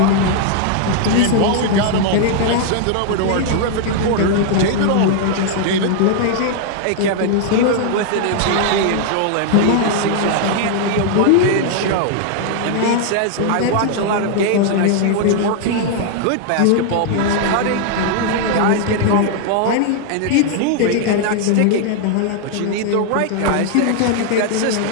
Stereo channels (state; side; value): different; both; correlation 0.00